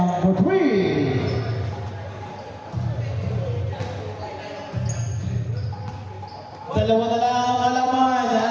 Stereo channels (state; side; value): identical; both; correlation 1.00